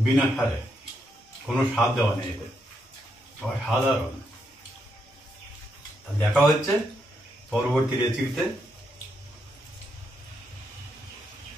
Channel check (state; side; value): normal; both; correlation 0.80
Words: বিনা সারে, কোনো স্বাদ দেওয়া নেই এতে, অসাধারণ। দেখা হচ্ছে পরবর্তী রেসিপিতে।